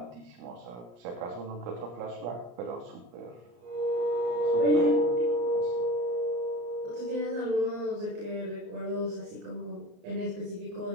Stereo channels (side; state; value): left; late; 34 ms